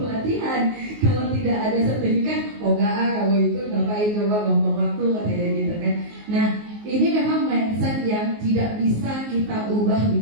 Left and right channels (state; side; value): late; left; 19 ms